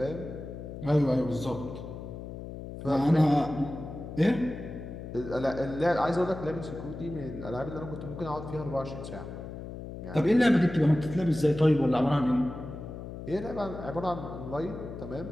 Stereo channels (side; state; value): left; noise; hum, 10 dB below the sound